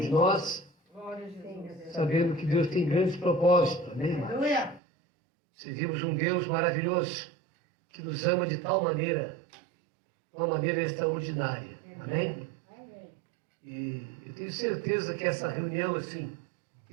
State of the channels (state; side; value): drops out; left; at 4.8 s